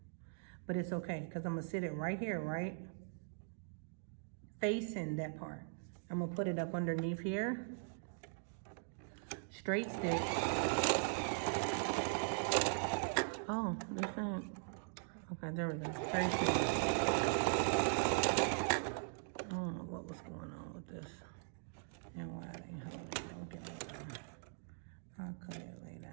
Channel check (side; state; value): left; silent; digital silence